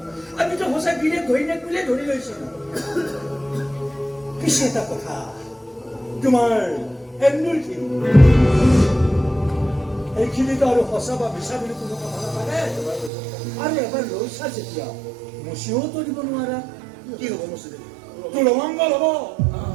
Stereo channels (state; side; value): drops out; left; at 13.1 s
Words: আমিতো সঁচা গিৰিয়েক ঘৈণীয়েক বুলিয়ে ধৰি লৈছিলো পিছে এটা কথা তোমাৰ এন্দুৰখিনি এইখিনিতো আৰু সঁচা বা মিছা বুলি কোনো কথা নাথাকে আৰু এবাৰ লৈছা যেতিয়া মচিও দিব নোৱাৰা কি হ'ব মচি তোৰ অমংগল হ'ব